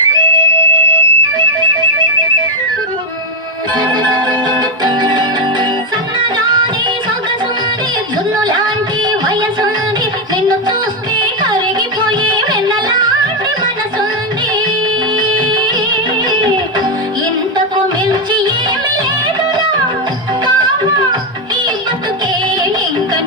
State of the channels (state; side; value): normal; both; correlation 0.07